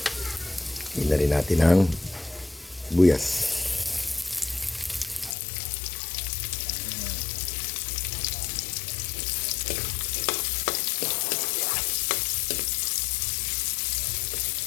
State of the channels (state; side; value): drops out; right; at 5.4 s